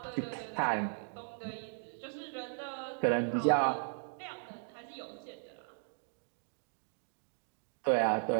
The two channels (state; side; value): silent; left; 53 dB below the other